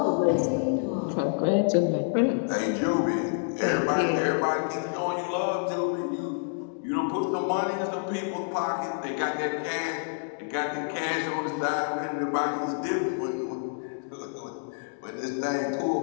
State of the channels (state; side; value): silent; right; digital silence